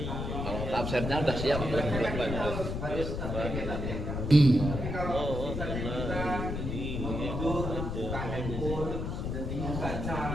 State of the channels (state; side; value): noise; left; rumble, 3 dB below the sound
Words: tafsirnya udah siap.